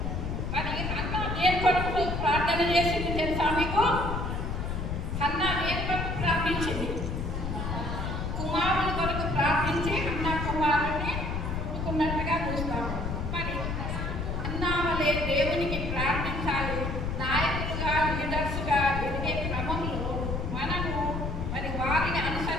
మరి అన్న దేని కొరకు ప్రార్థన చేసింది తెలుసా మీకు? అన్న దేని కొరకు ప్రార్థించింది? కుమారుని కొరకు ప్రార్థించి అన్న కుమారుని పుట్టుకున్నట్టుగా చూస్తాము. మరి అన్న వలె దేవునికి ప్రార్థించాలి. నాయకులుగా, లీడర్స్గా ఎదిగే క్రమంలో మనము మరి వారిని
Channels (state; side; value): noise; left; rumble, 3 dB below the sound